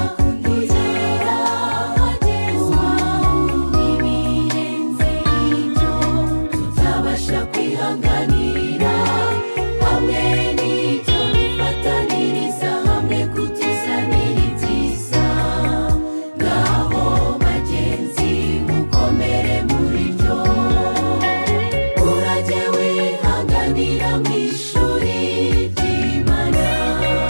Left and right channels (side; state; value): both; inverted; correlation -1.00